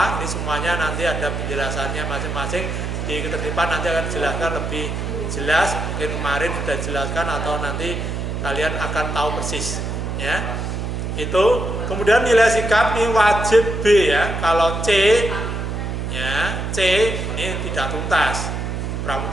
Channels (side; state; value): right; noise; hum, 3 dB below the sound